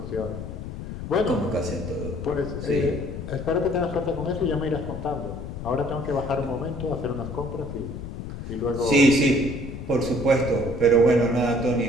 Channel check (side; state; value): left; noise; rumble, 8 dB below the sound